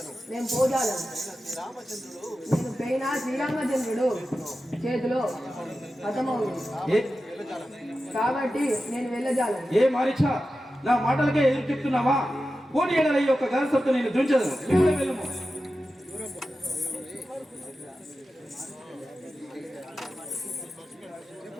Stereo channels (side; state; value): both; normal; correlation 0.93